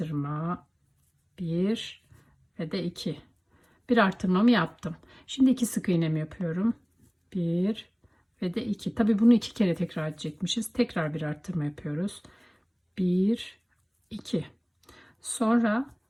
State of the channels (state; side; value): identical; both; correlation 1.00